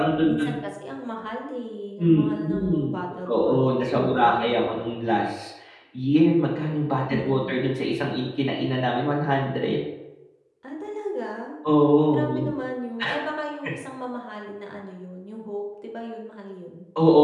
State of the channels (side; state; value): both; identical; correlation 1.00